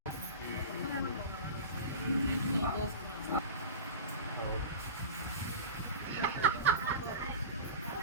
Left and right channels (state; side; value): inverted; both; correlation -0.30